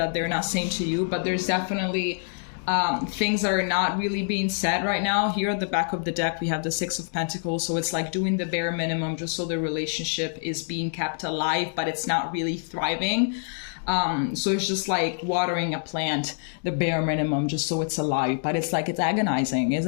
they're not saying to you, but there's definitely things that are not really being said right now. Here at the back of the deck, we have the Six of Pentacles, so it's like doing the bare minimum just so the relationship is being kept alive, but it's not really thriving. So it's just like watering a plant, the bare minimum, just so it's alive, but it's like, it's agonizing,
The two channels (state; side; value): silent; right; digital silence